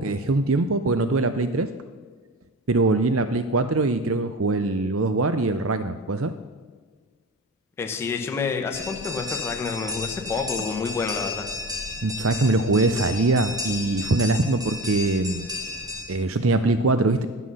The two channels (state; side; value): normal; both; correlation 0.31